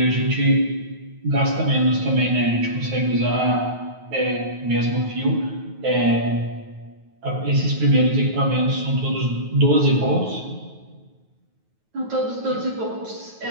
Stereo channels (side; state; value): left; late; 9.3 ms